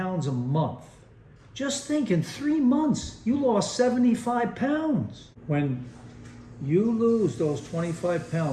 a month, just think in 3 months, you lost 75 pounds. When you lose those 25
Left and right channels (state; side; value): identical; both; correlation 1.00